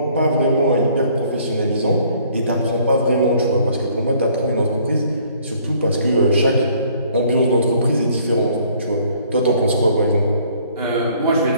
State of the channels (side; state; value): both; inverted; correlation -0.60